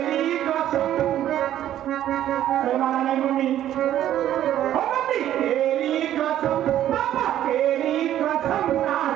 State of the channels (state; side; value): quieter; left; 11.9 dB